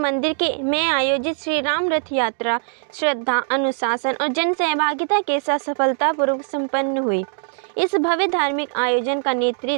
मंदिर में आयोजित श्री राम रथ यात्रा श्रद्धा, अनुशासन और जन सहभागिता के साथ सफलतापूर्वक संपन्न हुई। इस भव्य धार्मिक आयोजन का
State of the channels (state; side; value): silent; left; 65 dB below the other